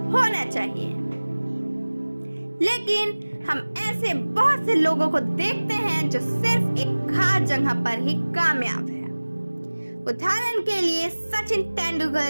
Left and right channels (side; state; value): both; inverted; correlation -1.00